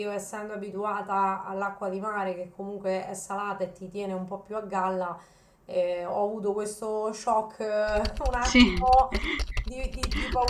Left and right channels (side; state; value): both; identical; correlation 1.00